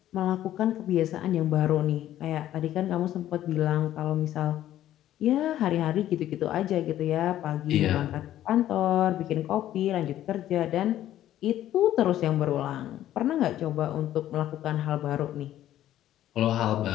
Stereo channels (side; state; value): right; quieter; 12.7 dB